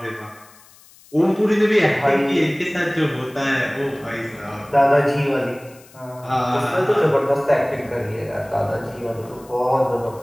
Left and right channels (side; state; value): left; noise; hiss, 25 dB below the sound